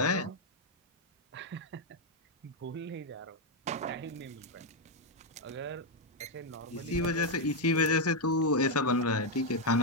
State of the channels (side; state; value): both; normal; correlation 0.02